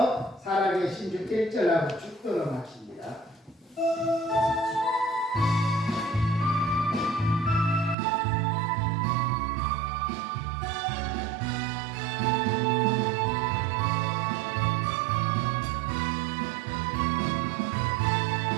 살아계신 주 1절하고 축도로 마칩니다.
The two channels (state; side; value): drops out; left; at 8.0 s